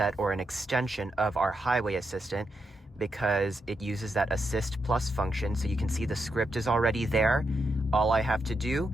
or an extension of our highway assistant because it uses that assist plus function. So you can see the script is already there. All I have to do,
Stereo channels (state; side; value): normal; both; correlation 0.84